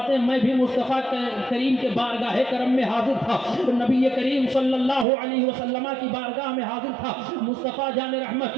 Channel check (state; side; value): drops out; left; at 5.1 s